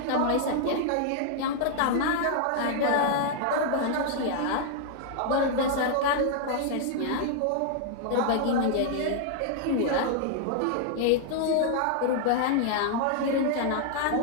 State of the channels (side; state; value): both; different; correlation 0.00